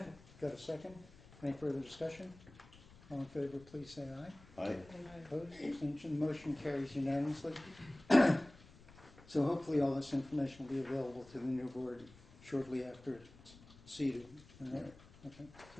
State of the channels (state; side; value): noise; left; rumble, 22 dB below the sound